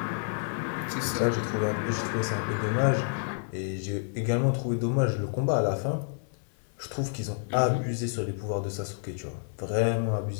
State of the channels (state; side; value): silent; right; digital silence